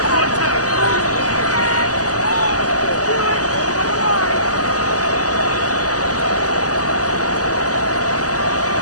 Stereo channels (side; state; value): right; late; 0.67 ms